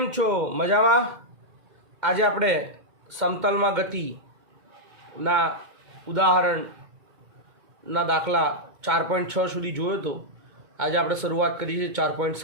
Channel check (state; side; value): late; left; 2.1 ms